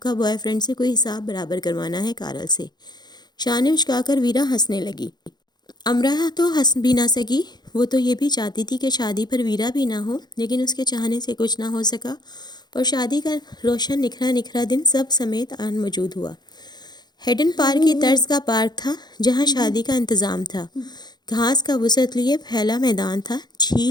بوائے فرینڈ سے کوئی حساب برابر کروانا ہے کارل سے۔ شانے اچکا کر ویرا ہنسنے لگی۔ امرا تو ہنس بھی نہ سکی، وہ تو یہ بھی چاہتی تھی کہ شادی پر ویرا بھی نہ ہو، لیکن اس کے چاہنے سے کچھ نہ ہو سکا اور شادی کا روشن نکھرا نکھرا دن سب سمیت آن موجود ہوا۔ ہیڈن پارک کی طرز کا پارک تھا جہاں شادی کا انتظام تھا۔ گھاس کا وسعت لیے پھیلا میدان تھا،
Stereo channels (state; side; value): late; right; 0.20 ms